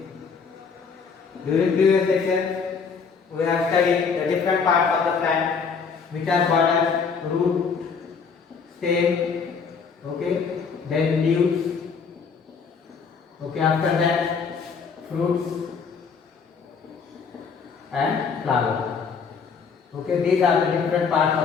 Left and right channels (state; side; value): quieter; right; 5.6 dB